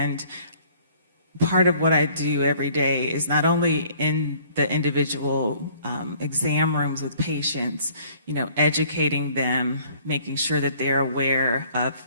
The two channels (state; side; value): inverted; both; correlation -0.57